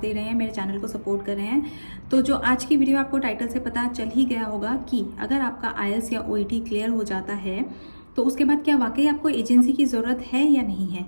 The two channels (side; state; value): both; inverted; correlation -1.00